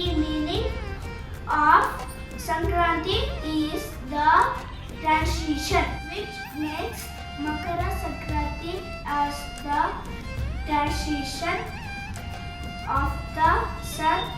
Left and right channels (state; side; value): identical; both; correlation 1.00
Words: meaning of Sankranti is the transition, which makes Makara Sankranti as the transition of the sun